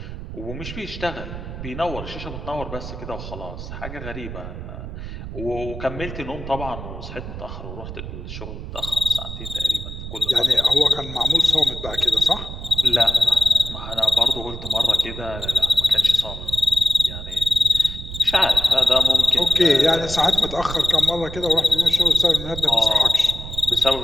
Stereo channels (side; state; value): right; noise; rumble, 9 dB below the sound